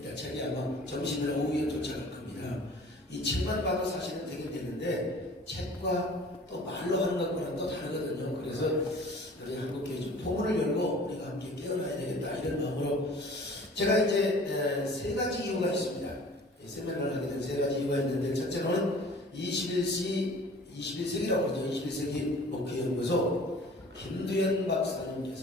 책이 아마 점심이나 오후에 도착할 겁니다. 이 책만 봐도 사실은 되긴 되는데 책과 또 말로 하는 것과는 또 다르거든요. 그래서 우리 한국교회 좀 포문을 열고 우리가 함께 깨어나야 되겠다 이런 마음으로 제가 이제 세 가지 이유가 있습니다. 세미나를 하게 된 세 가지 이유가 있는데 첫째로는 21세기라고 그러죠. 21세기 목회연구소 김두현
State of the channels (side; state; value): both; normal; correlation 0.47